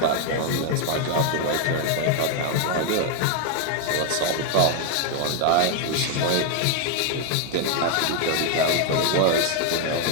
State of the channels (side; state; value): both; different; correlation 0.01